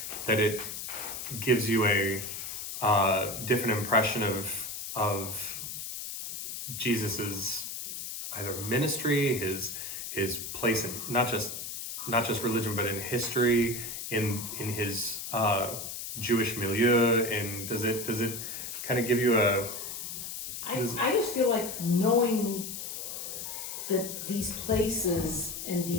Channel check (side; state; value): left; noise; hiss, 7 dB below the sound